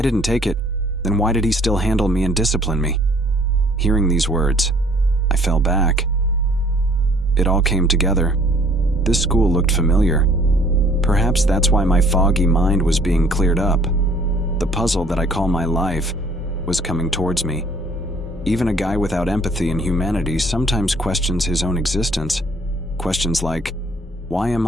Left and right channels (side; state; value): both; normal; correlation 0.58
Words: didn't take it. Then why did he still handle me and discipline me? Hearing these words, I fell back. It all came together. This school looked familiar. Perhaps that's why my foggy mind was being cleared up. The puzzle that I call my life was coming towards me. Even a guy without empathy and humanity sometimes questions his own existence. Questions like, why am